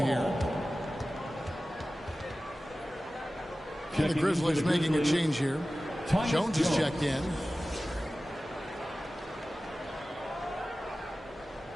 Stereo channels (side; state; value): both; normal; correlation 0.96